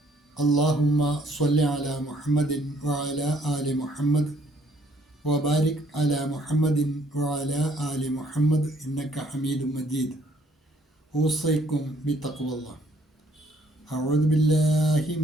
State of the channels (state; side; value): normal; both; correlation 0.63